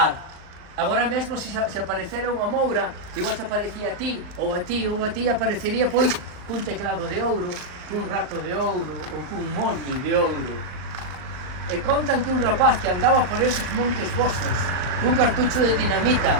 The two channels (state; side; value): late; left; 39 ms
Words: Agora mesmo, se aparecera unha moura, igual se aparecía a ti, ou a ti, ou a ti, aparecería, pois, cun teclado de ouro, cun rato de ouro, ou cun molde de ouro. E contan que un rapaz que andaba por esos montes vosos, cun cartucho de dinamita,